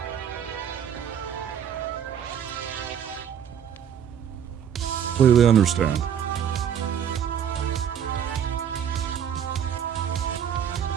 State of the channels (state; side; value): quieter; left; 8.7 dB